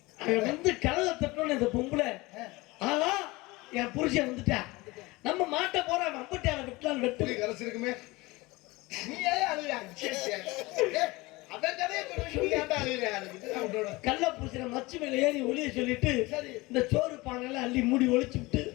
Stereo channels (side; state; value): right; quieter; 22.3 dB